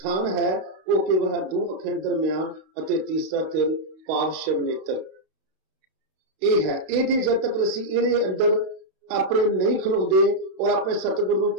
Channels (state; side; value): late; left; 31 ms